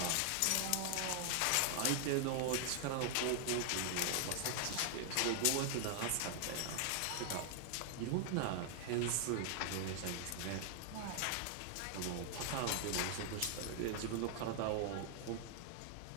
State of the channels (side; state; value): both; different; correlation 0.00